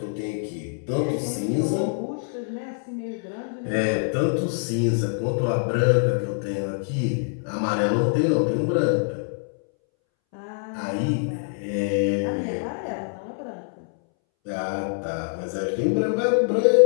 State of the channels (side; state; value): right; silent; 62 dB below the other